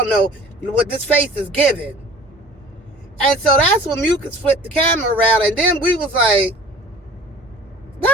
know what this face is giving. And so that's when Mucus flipped the camera around, and then we was like,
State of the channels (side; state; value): both; normal; correlation 0.46